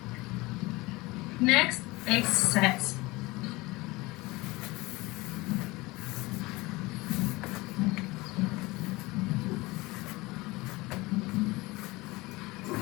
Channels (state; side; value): quieter; right; 22.0 dB